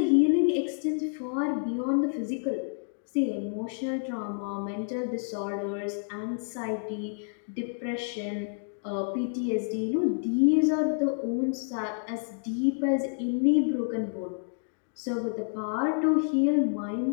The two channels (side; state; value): right; silent; digital silence